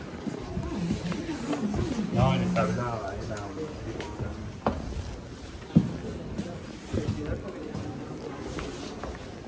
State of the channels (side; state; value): both; identical; correlation 1.00